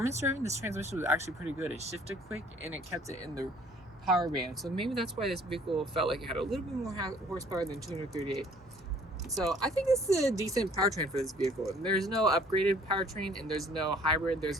driving, this transmission was actually pretty good. It shifted quick and it kept it in the power band. So maybe that's why this vehicle felt like it had a little bit more horsepower than 238. So I think this is a decent powertrain for this vehicle. There's no upgraded powertrain and there's no hybrid.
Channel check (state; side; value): normal; both; correlation 0.56